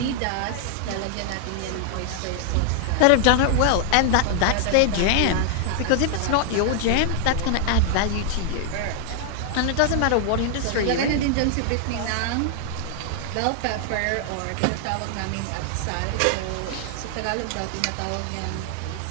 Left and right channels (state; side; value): different; both; correlation 0.00